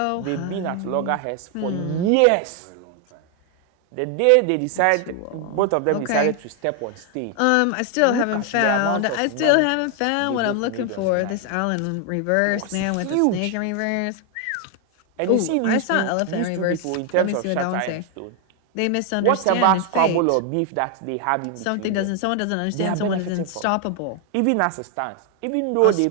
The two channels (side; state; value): both; different; correlation 0.00